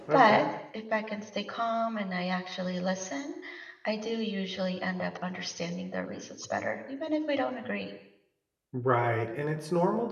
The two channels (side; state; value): both; identical; correlation 1.00